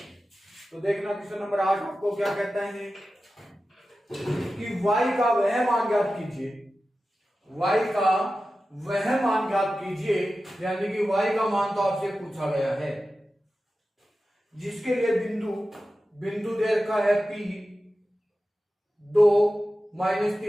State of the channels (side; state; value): both; normal; correlation 0.94